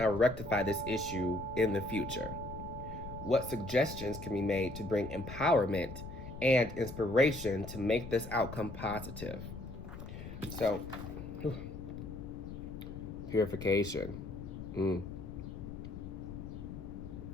rectify this issue in the future? What suggestions can be made to bring empowerment and inspiration to make this outcome positive? So, purification.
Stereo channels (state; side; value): noise; left; rumble, 10 dB below the sound